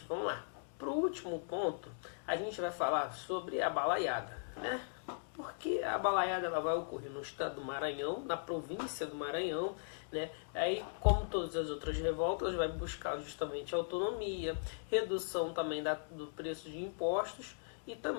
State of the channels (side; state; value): right; silent; digital silence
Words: vamos lá. Para o último ponto, a gente vai falar sobre a balaiada, né? Porque a balaiada ela vai ocorrer no estado do Maranhão, na província do Maranhão, né? Aí, como todas as outras revoltas, vai buscar justamente autonomia, redução também do preço de impostos, e